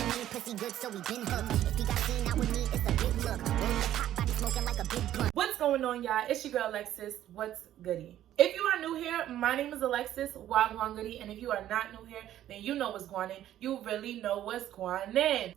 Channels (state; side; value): quieter; left; 12.3 dB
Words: me, pussy good, so we been hooked. If he got seen out with me, it's a big look. Word to pop, body smoking like a big blunt. What's going on, y'all? It's your girl, Alexis. What's goody? If you are new here, my name is Alexis, Wagwan Goody, and if you are not new here, then you know what's going on. You really know what's going on.